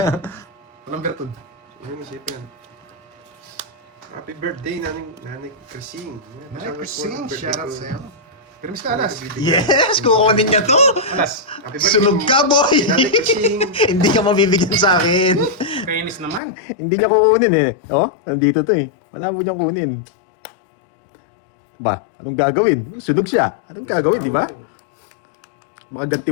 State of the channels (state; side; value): drops out; right; at 16.4 s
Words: Walang bertod. Ayun, masipin. Happy birthday, Nanay Krising. Nanay Krising, shoutout sa'yo. Permis ka, Alas. Yes, kukunin niya to. Alas. Happy birthday. Sunog ka, boy. Nanay Krising. Hindi ka mabibigyan sa akin. Kainis naman. Hindi niya kukunin eh. Oh, nandito to eh. Wala mo niyang kunin. Ba, anong gagawin? Sunog siya. Anong gagawin, di ba? Makaganti